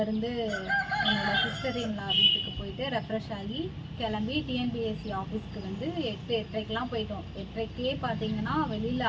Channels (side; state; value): both; identical; correlation 1.00